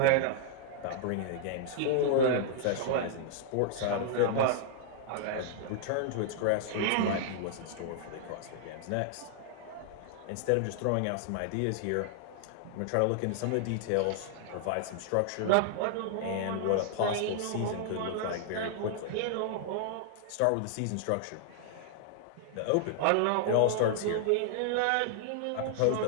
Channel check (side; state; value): both; different; correlation -0.01